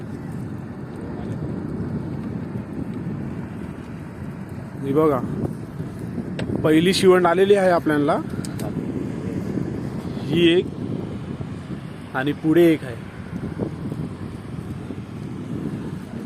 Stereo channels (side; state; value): both; identical; correlation 1.00